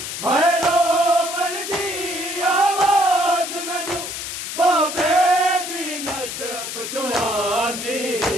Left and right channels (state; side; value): noise; left; hiss, 6 dB below the sound